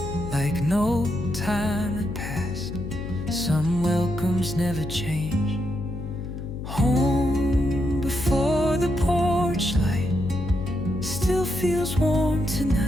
like no time had passed. Some welcomes never change. Home before the porch light still feels warm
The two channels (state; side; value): noise; left; hum, 8 dB below the sound